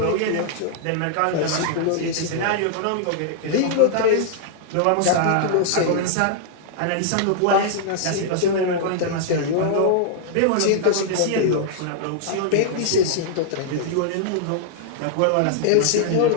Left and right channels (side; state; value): both; different; correlation -0.01